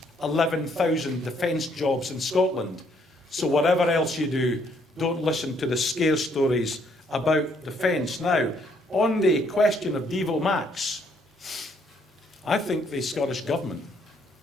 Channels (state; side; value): normal; both; correlation 0.68